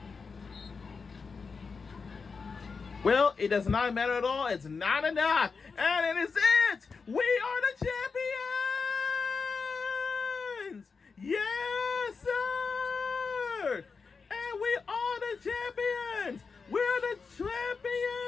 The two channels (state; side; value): quieter; right; 5.0 dB